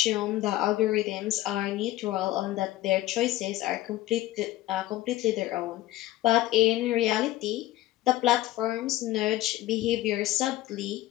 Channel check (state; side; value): quieter; right; 15.9 dB